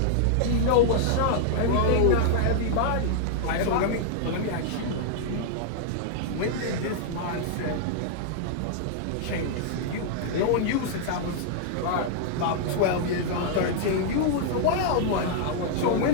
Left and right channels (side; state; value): both; different; correlation -0.01